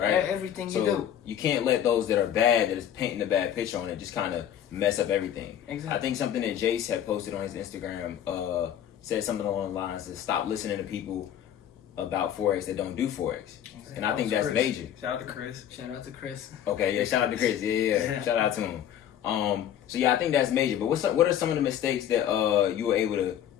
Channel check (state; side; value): quieter; right; 10.2 dB